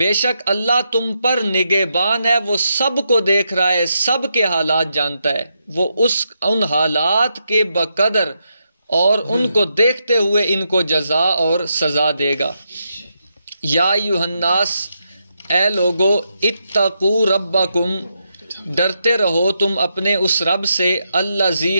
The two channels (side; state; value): both; inverted; correlation -0.82